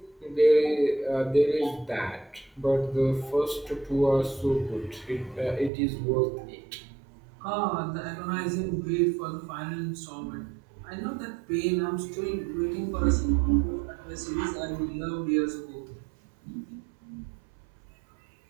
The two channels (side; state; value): left; drops out; at 5.7 s